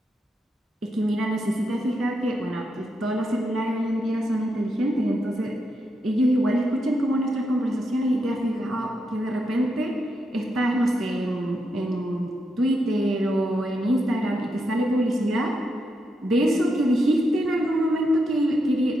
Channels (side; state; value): both; normal; correlation 0.83